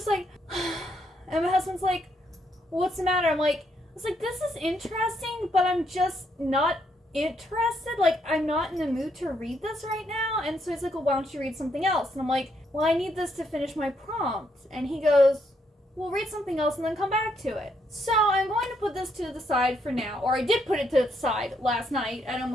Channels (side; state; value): both; normal; correlation 0.75